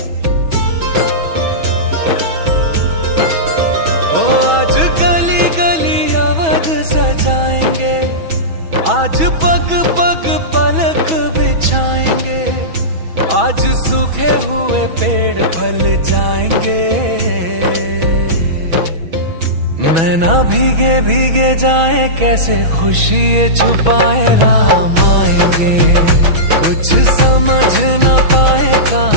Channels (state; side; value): late; left; 6.2 ms